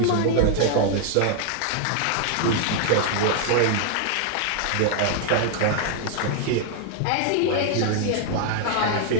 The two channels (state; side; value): different; both; correlation 0.00